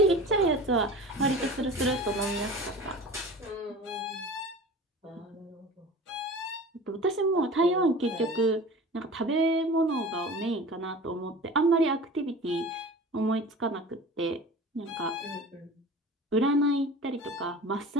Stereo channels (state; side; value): normal; both; correlation 0.38